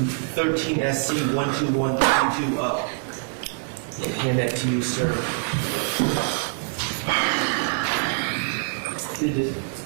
13 SC 12132 up. I'll hand that to you, sir.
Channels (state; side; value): silent; left; 62 dB below the other